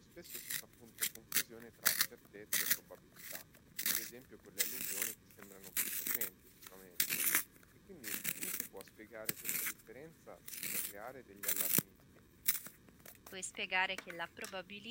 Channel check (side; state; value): both; identical; correlation 1.00